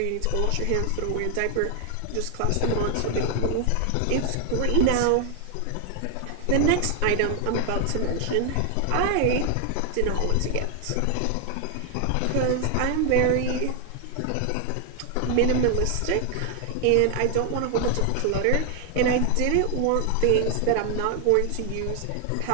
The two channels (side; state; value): both; different; correlation 0.00